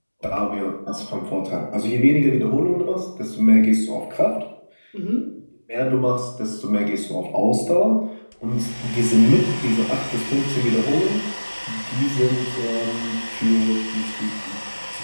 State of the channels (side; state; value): both; inverted; correlation -1.00